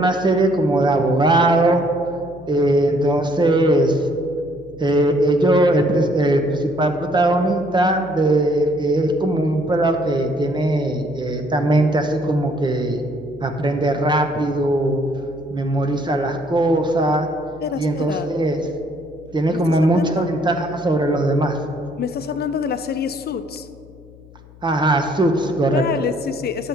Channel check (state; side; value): noise; left; hum, 23 dB below the sound